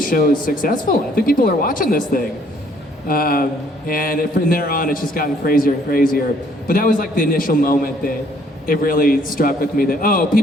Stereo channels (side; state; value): both; normal; correlation 0.63